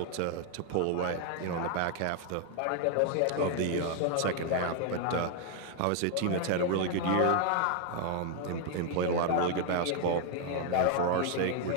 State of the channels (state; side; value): different; both; correlation 0.00